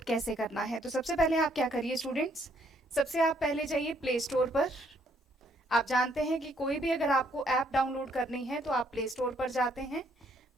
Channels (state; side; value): normal; both; correlation 0.69